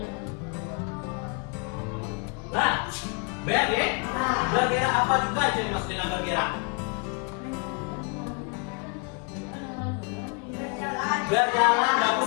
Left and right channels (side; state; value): right; quieter; 34.4 dB